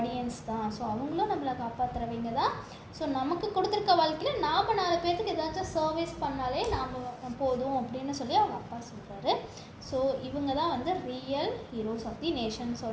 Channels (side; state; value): both; identical; correlation 1.00